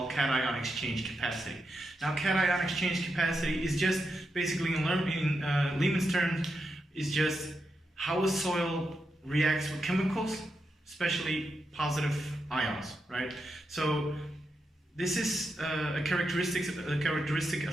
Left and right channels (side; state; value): both; normal; correlation 0.86